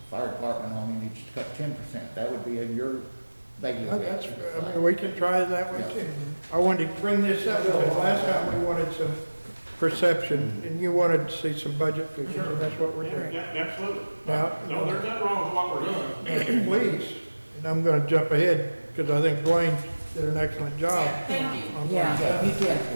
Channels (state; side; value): inverted; both; correlation -1.00